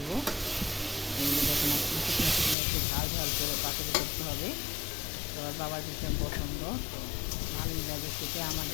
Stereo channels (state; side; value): drops out; right; at 2.6 s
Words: এই দেখুন শুকনো শুকনো একটু ঝাল ঝাল করে পাতুরি করতে হবে। তো বাবার ভীষণ পছন্দ, তো ভালোই লাগে খেতে,